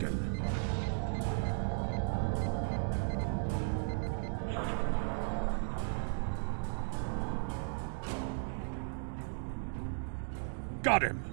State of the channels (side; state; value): left; silent; digital silence